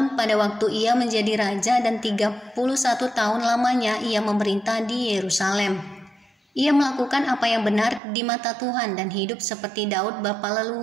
pada waktu ia menjadi raja dan 31 tahun lamanya ia memerintah di Yerusalem. Ia melakukan apa yang benar di mata Tuhan dan hidup seperti Daud bapa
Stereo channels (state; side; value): drops out; left; at 8.0 s